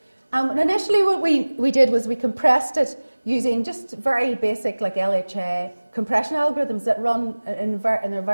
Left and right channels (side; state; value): both; inverted; correlation -1.00